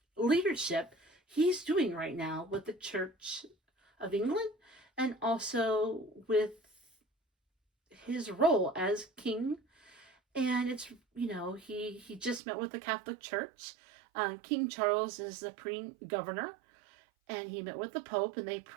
leadership he's doing right now with the Church of England and also with his role as king. And it's, he just met with the Catholic Church. King Charles is the governor, and he met with the Pope, and they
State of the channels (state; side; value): drops out; left; at 12.4 s